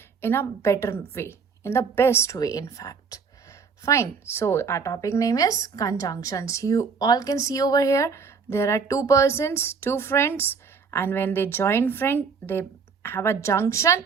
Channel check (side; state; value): left; quieter; 5.5 dB